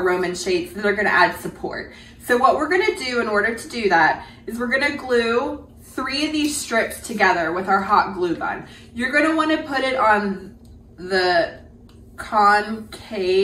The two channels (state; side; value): identical; both; correlation 1.00